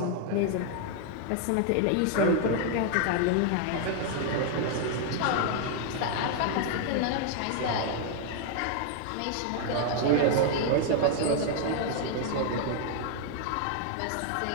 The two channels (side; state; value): both; different; correlation 0.00